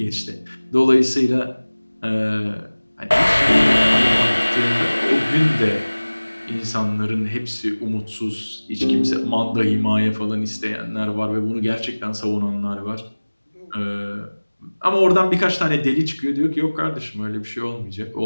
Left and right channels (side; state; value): both; inverted; correlation -1.00